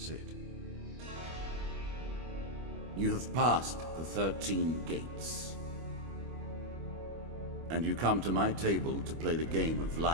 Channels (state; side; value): late; left; 25 ms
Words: You have passed the 13 gates. And you come to my table to play the game of